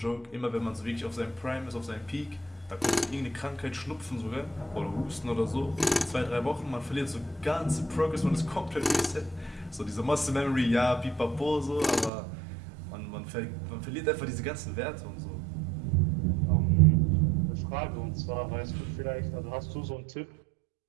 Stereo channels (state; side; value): drops out; left; at 12.1 s